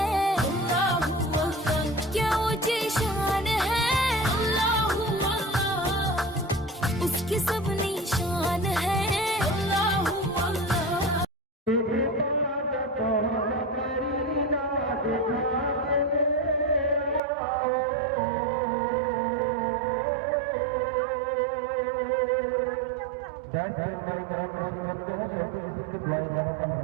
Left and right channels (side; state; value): left; drops out; at 17.2 s